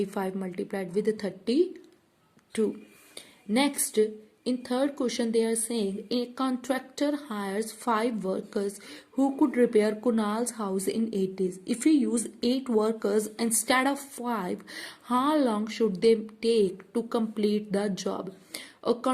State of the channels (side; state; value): both; identical; correlation 1.00